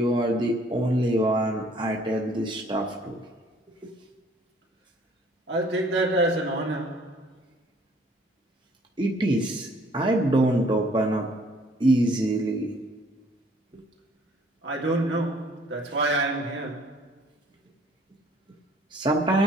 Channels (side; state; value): both; normal; correlation 0.59